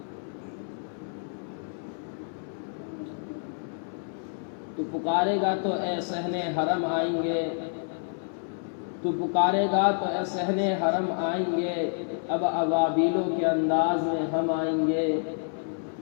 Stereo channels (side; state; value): right; silent; 59 dB below the other